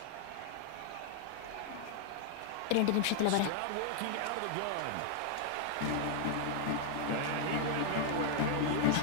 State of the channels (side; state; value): both; different; correlation 0.00